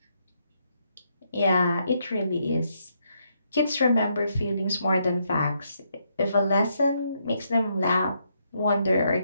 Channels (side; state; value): both; inverted; correlation -0.76